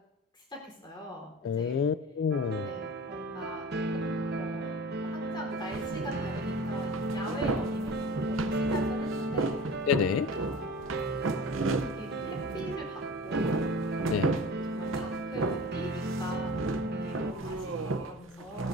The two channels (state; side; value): normal; both; correlation 0.37